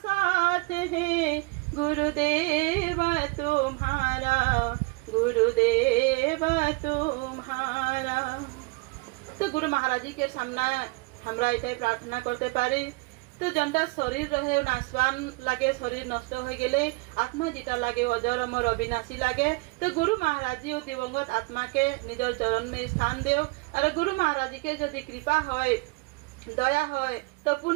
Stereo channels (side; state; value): left; quieter; 26.3 dB